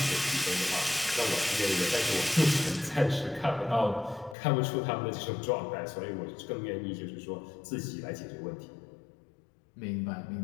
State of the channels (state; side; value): drops out; right; at 4.4 s